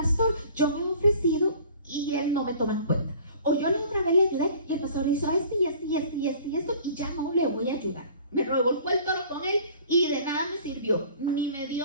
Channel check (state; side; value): inverted; both; correlation -0.48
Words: yo me he ofrecido y él no me toma en cuenta. O yo la otra vez le ayudé y el pastor hizo esto y esto y esto y esto y esto y ya no le voy a ayudar. Me revolcó el toro con él y de nada me sirvió, ni me